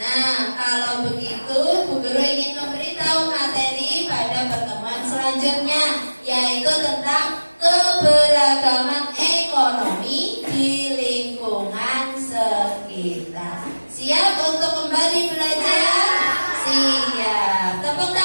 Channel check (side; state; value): both; inverted; correlation -1.00